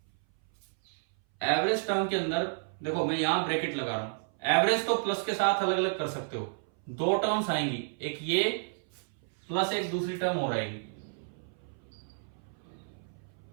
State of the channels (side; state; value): left; silent; 57 dB below the other